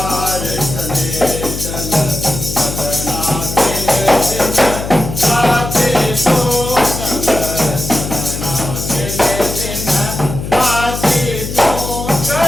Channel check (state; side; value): noise; left; hum, 7 dB below the sound